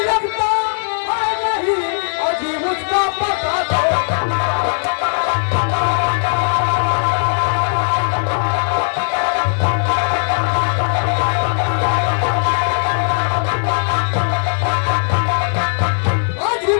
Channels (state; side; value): silent; right; digital silence